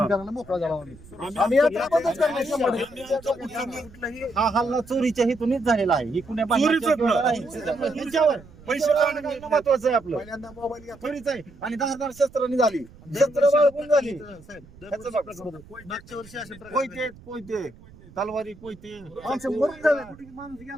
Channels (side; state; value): right; noise; rumble, 22 dB below the sound